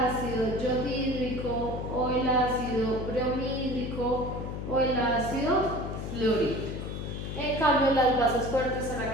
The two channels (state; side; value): noise; left; hum, 6 dB below the sound